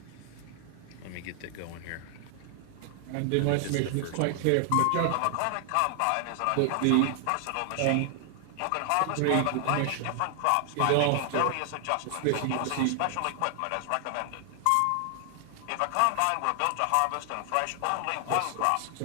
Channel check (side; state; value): both; different; correlation 0.00